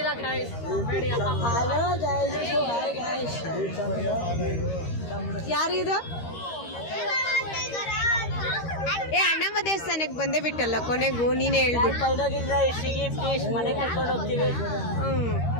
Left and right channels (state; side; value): late; right; 13 ms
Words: ಇಲ್ಲ ಗಾಯ್ಸ್. ಯಾರಿದು? ಅಣ್ಣಮ್ಮ ದೇವಸ್ಥಾನಕ್ಕೆ ಬಂದೇ ಬಿಟ್ಟಲ್ಲ ಕೊನೆಗೂ, ನೀನೇ ಹೇಳ್ಬಿಟ್ಟು. ಮನೆ ಕರ್ಕೊಂಡು ಹೋಗ್ತೀವಿ.